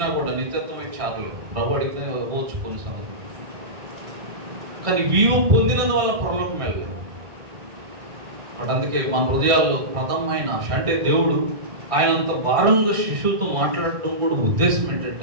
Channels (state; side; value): late; left; 2.3 ms